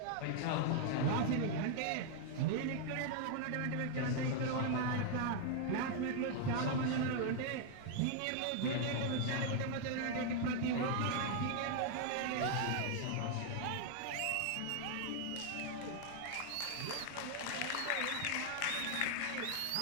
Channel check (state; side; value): different; both; correlation 0.00